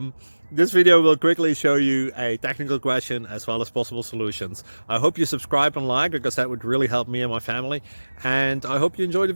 this video will quickly show you a technical question as well as possible solutions. I hope you subscribe and like, because that would really help me and my family. And I hope you enjoy the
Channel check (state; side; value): inverted; both; correlation -1.00